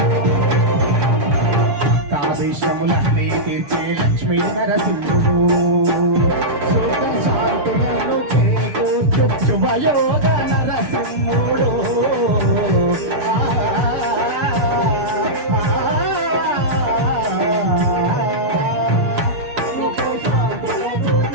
తావేశములన్నీ తీర్చే లక్ష్మీ నరసింహుడు శాంతులను చేకూర్చు శుభయోగ నరసింహుడు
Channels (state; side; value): late; left; 6.8 ms